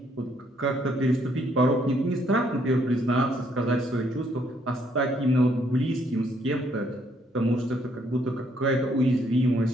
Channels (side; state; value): both; normal; correlation 0.69